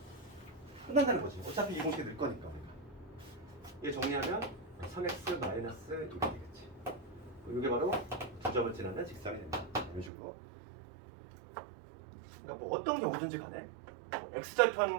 끝난다는 거지. 어차피 이 공식에 넣을 거니까. 얘 정리하면 3x-1이 되겠지. 이게 바로 2점을 지나는 직선이 된다. 이런 식으로. 그러니까 뭐 어떤 경우든지 간에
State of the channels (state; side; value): drops out; left; at 10.1 s